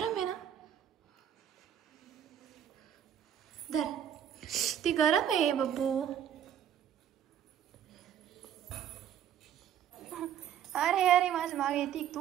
आहे ना? धर. ती गरम आहे बब्बू. अरे अरे माझ्या मागे येते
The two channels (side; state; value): left; quieter; 9.7 dB